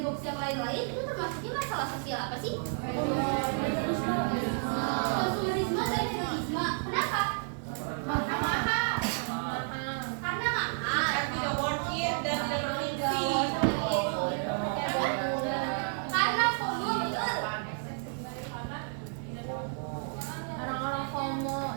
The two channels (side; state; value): left; silent; 57 dB below the other